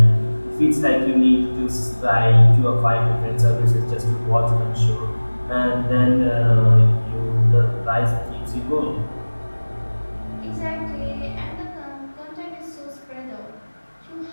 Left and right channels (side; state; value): both; inverted; correlation -1.00